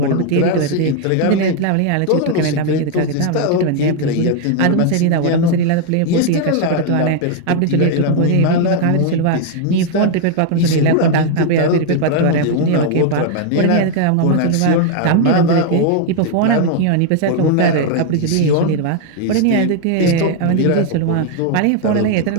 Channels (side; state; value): both; different; correlation 0.00